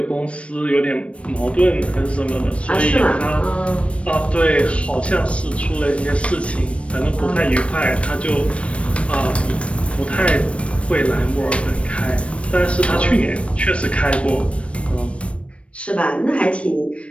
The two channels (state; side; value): late; right; 0.061 ms